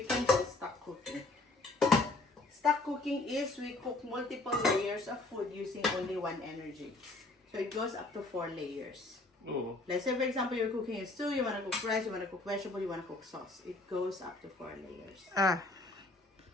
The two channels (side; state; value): right; quieter; 3.1 dB